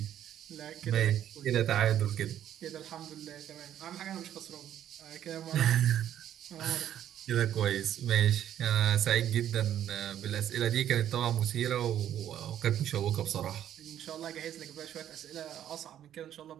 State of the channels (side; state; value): left; quieter; 10.9 dB